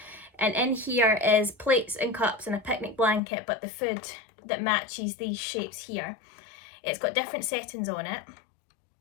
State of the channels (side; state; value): right; drops out; at 3.2 s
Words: And in here is plates and cups and a picnic blanket, but the food that matches these shapes here. It's got different settings on it.